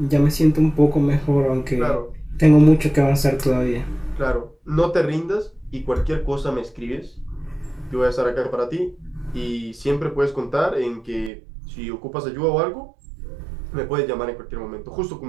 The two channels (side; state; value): left; drops out; at 11.3 s